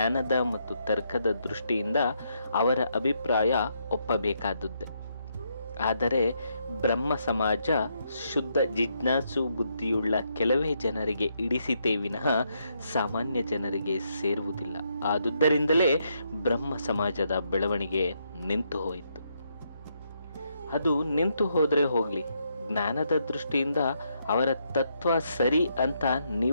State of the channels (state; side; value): inverted; both; correlation -0.77